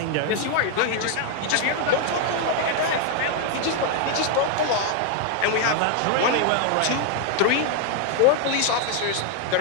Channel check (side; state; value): both; different; correlation 0.00